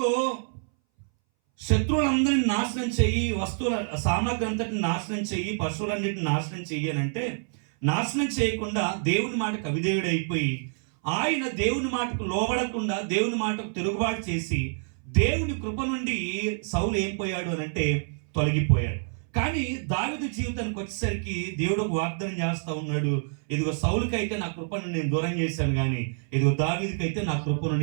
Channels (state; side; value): silent; left; 60 dB below the other